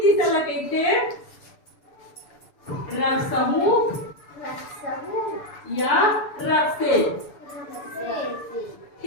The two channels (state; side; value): late; right; 6.9 ms